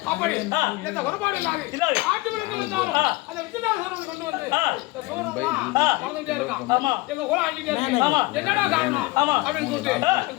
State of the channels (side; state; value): right; quieter; 21.7 dB